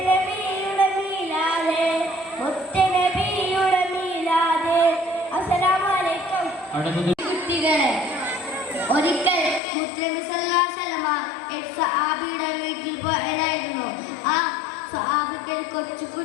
മീലാദ് മുത്തനബിയുടെ മീലാദ്. അസ്സലാമു അലൈക്കും. കുട്ടികളെ, ഒരിക്കൽ മുസ്ലിം സഹാബിയുടെ വീട്ടിൽ പോയതായിരുന്നു. ആ സഹാബത്തിൽ കൊച്ചു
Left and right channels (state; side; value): drops out; right; at 9.6 s